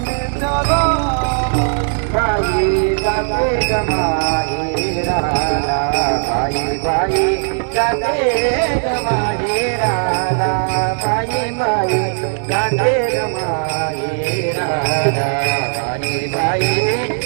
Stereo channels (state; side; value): silent; left; 64 dB below the other